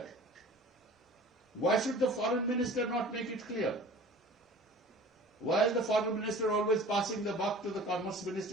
Why should the foreign minister not make it clear? Why is the foreign minister always passing the buck to the commerce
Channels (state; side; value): normal; both; correlation 0.44